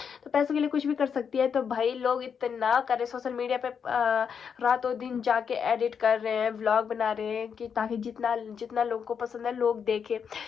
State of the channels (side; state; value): right; quieter; 6.9 dB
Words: तो पैसों के लिए कुछ भी कर सकती है। तो भाई लोग इतना करे सोशल मीडिया पे रातों दिन जाके एडिट कर रहे हैं, व्लॉग बना रहे हैं कि ताकि जितना जितना लोगों को पसंद है लोग देखे,